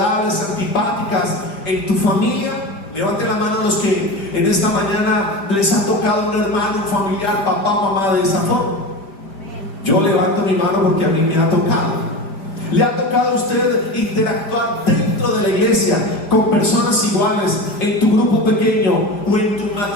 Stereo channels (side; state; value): right; late; 5.0 ms